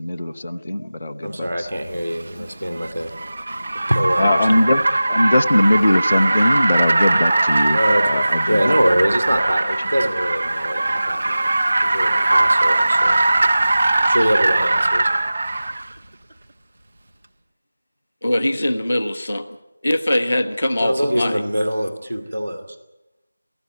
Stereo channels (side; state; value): both; inverted; correlation -0.96